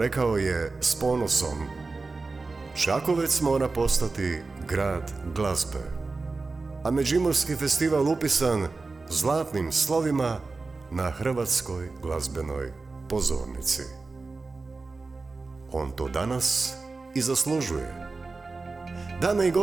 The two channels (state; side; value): quieter; left; 3.8 dB